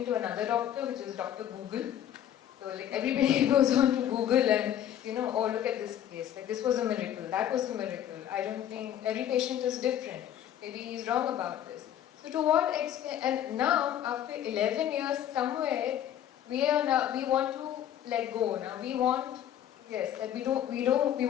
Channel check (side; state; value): right; quieter; 10.7 dB